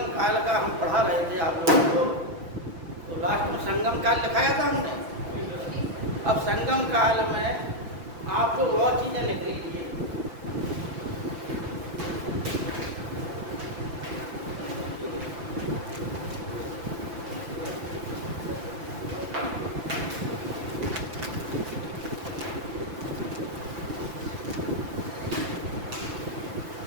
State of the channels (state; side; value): late; left; 5.9 ms